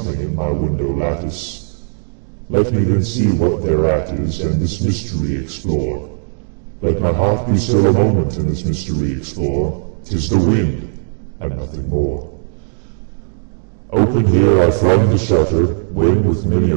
in my window lattice. Let me then see what thereat is, and this mystery explore. Let my heart be still a moment, and this mystery explore. 'Tis the wind, and nothing more." Open here I flung the shutter, when with many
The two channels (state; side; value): silent; left; 66 dB below the other